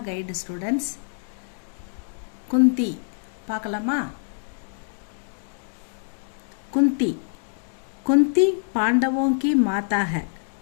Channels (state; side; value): silent; right; digital silence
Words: guide students. Kunti பார்க்கலாமா? குந்தி குந்தி பாண்டவோं की माता है.